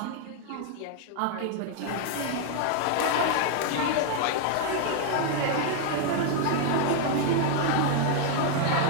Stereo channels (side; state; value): both; different; correlation 0.00